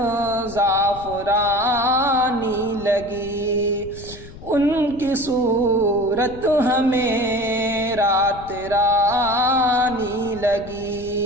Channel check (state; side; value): noise; left; rumble, 16 dB below the sound